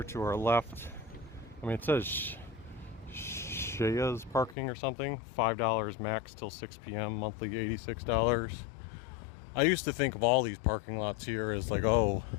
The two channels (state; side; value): drops out; right; at 4.5 s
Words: to our left, I mean, it says Shaya's parking or something, $5 max till 6 p.m., monthly $86. I used to think of all these parking lots here as like,